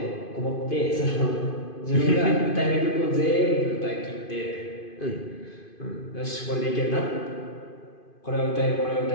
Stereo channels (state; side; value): late; right; 2.5 ms